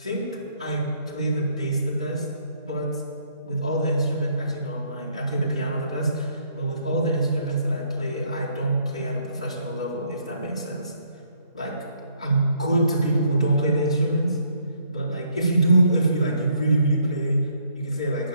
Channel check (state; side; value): inverted; both; correlation -0.69